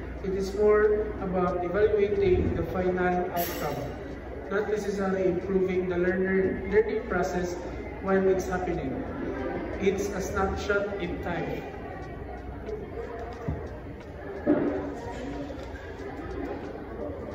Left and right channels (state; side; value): identical; both; correlation 1.00